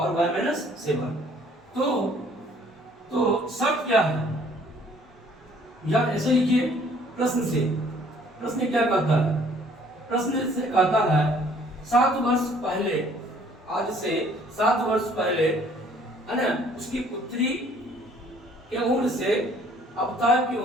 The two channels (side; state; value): both; normal; correlation 0.58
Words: y माइनस 7। तो शर्त क्या है? या ऐसे लिखिए प्रश्न क्या कहता है? प्रश्न से कहता है 7 वर्ष पहले, आज से 7 वर्ष पहले, है ना, उसकी पुत्री के उम्र से आफ्ताब की